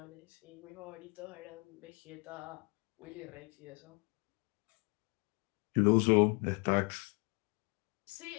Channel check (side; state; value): right; quieter; 31.4 dB